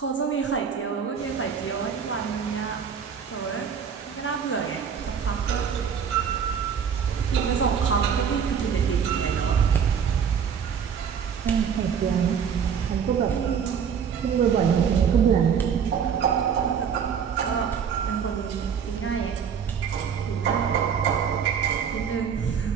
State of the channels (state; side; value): quieter; left; 7.2 dB